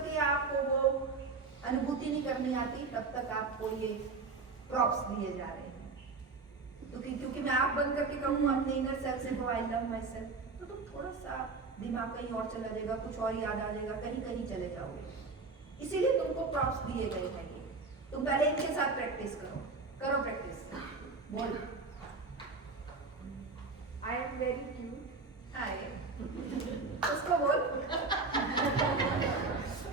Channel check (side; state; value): left; quieter; 4.1 dB